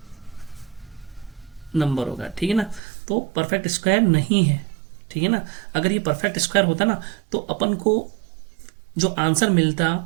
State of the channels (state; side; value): drops out; left; at 2.8 s